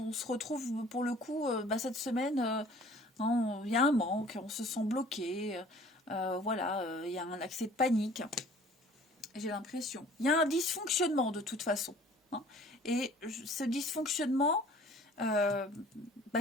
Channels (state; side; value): normal; both; correlation 0.51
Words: se retrouve pour le coup cette semaine. Il y a un manque, on se sent bloqué. Voilà, il y a un accès de panique. J'ai l'impression. Il y a un dysfonctionnement de toute façon. Hein. Et ce dysfonctionnement,